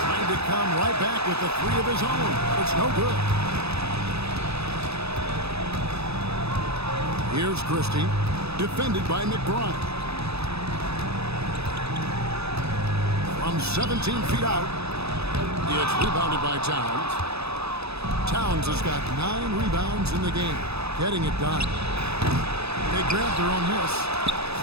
to come right back with the 3 of his own. It's no good. Here's Christie. Defended by McBride. From 17 feet out. It's rebounded by Towns. Towns has got 9 rebounds in the game. Getting it done. They grab their own miss.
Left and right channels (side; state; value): left; late; 0.79 ms